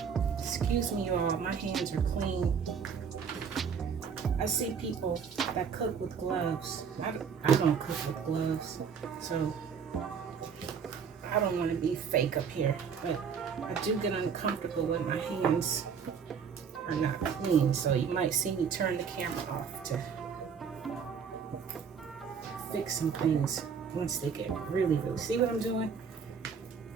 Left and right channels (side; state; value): left; quieter; 6.6 dB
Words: Excuse me, y'all, my hands are clean. I see people that cook with gloves. I don't cook with gloves, so I don't want to be fake up here, but I do get uncomfortable when my hands are not clean, so you might see me turn the camera off to fix some things once they get really, see what I'm doing?